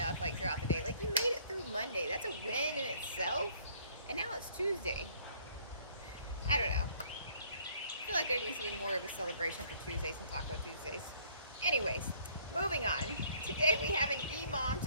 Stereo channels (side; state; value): both; inverted; correlation -0.60